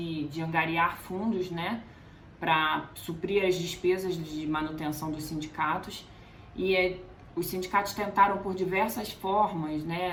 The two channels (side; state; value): both; identical; correlation 1.00